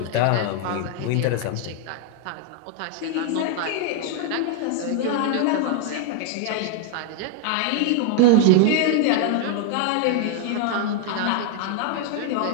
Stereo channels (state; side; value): different; both; correlation 0.00